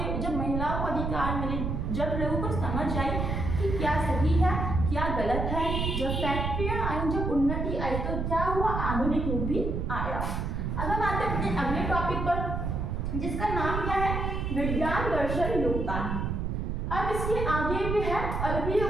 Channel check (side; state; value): right; noise; rumble, 1 dB below the sound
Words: को अधिकार मिले, जब लोगों को समझ आई कि क्या सही है क्या गलत है, जब फैक्ट्रियां आई, जब उन्नति आई, तो क्या हुआ, आधुनिक युग भी आया। अब हम आते हैं अपने अगले टॉपिक पर जिसका नाम क्या है, विज्ञान दर्शन योगदान। अब इसके आगे भी है अरबियों